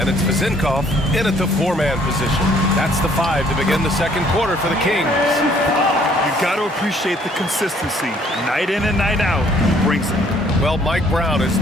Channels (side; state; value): both; normal; correlation 0.61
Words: it's Vezenkov in at the four-man position. That's the 5 to begin the second quarter for the Kings. You've got to appreciate the consistency. Night in and night out, he brings it. Well, Mike Brown is